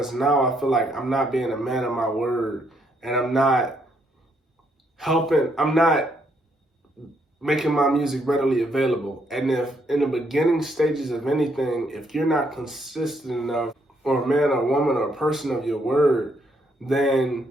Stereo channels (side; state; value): both; normal; correlation 0.73